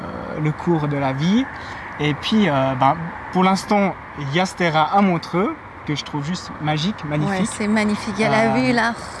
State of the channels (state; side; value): identical; both; correlation 1.00